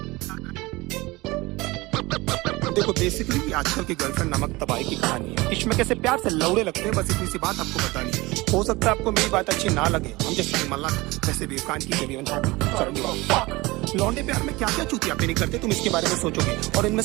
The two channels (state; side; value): quieter; left; 21.9 dB